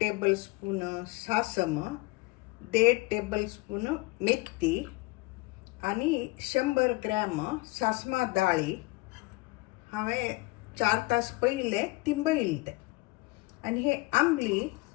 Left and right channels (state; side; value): quieter; right; 23.4 dB